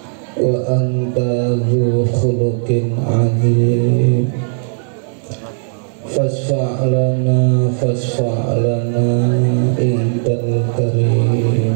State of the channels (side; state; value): left; silent; 57 dB below the other